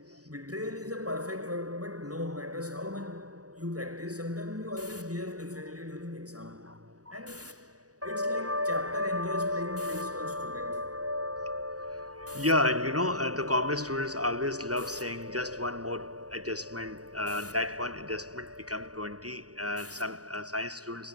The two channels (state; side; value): late; left; 0.67 ms